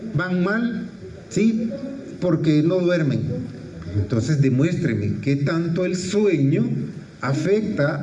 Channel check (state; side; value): identical; both; correlation 1.00